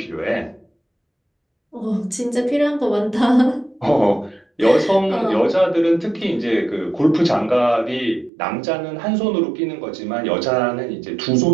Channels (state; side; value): drops out; left; at 8.3 s